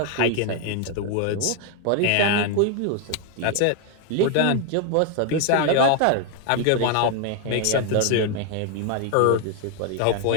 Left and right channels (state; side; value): different; both; correlation 0.01